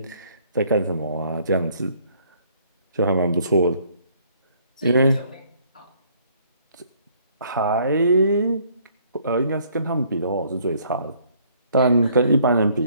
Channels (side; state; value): both; inverted; correlation -0.63